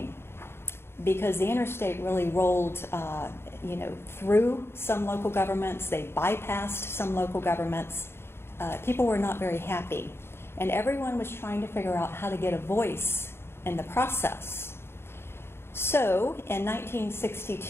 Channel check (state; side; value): late; right; 0.12 ms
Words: because the interstate really rolled through some local governments. They bypassed some local governments. People were not very happy. And everyone was trying to figure out how to get a voice in the process. So in